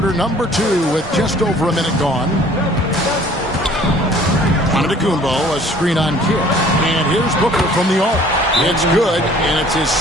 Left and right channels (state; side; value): normal; both; correlation 0.53